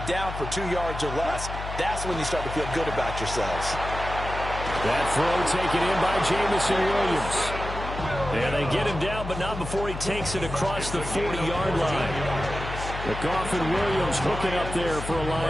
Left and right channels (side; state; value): left; noise; hum, 7 dB below the sound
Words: down for 2 yards or less. That's when you start to feel good about yourselves. That throw taken in by Jamison Williams. And they get him down, but not before he takes it across the 40-yard line. The Goff and Williams hooking up there for a